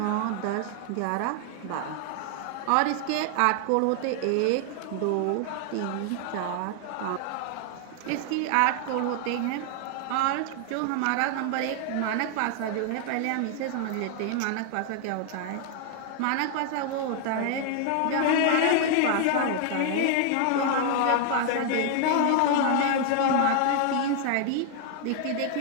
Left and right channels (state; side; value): different; both; correlation 0.00